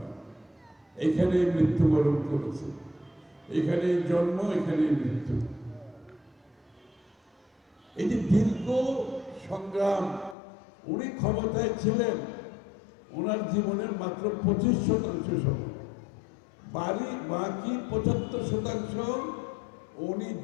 এখানেই মৃত্যুবরণ করেছে, এখানেই জন্ম, এখানেই মৃত্যু। এই যে দীর্ঘ সংগ্রাম, উনি ক্ষমতায় ছিলেন, ওনার জীবনের মাত্র 25% সময়, বাকি 75% উনি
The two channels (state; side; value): drops out; right; at 10.4 s